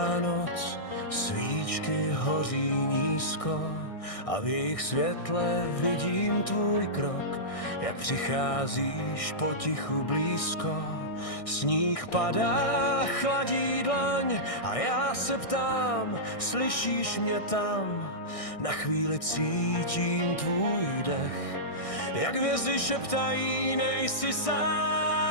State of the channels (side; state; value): right; late; 1.6 ms